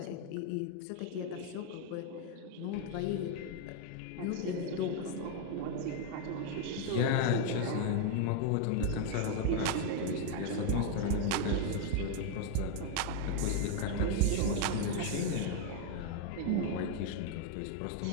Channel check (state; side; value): different; both; correlation 0.00